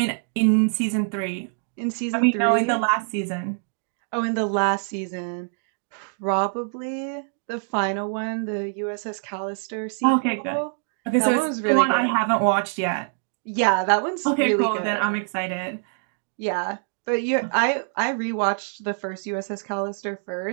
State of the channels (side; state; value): left; silent; digital silence